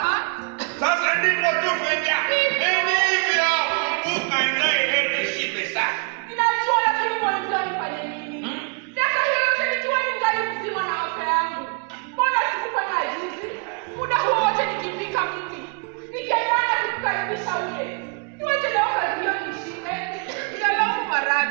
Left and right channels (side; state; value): left; quieter; 36.7 dB